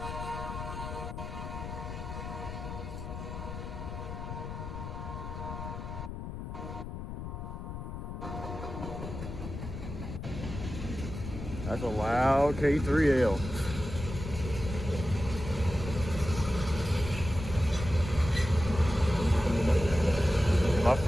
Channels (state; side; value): noise; left; rumble, 7 dB below the sound